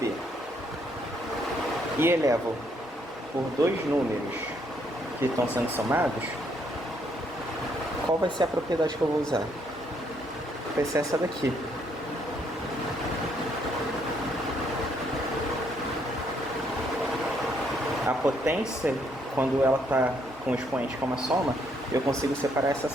e elevo por 2 números que estão sendo somados, qual vai ser a propriedade que eu vou usar? Vai ser essa daqui. A potência, quando ela está com o expoente como a soma, eu consigo separar essa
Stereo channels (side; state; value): both; normal; correlation 0.71